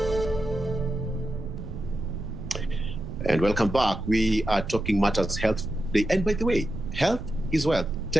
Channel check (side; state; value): right; noise; rumble, 9 dB below the sound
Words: And welcome back. We are talking matters health today. And by the way, health is wealth.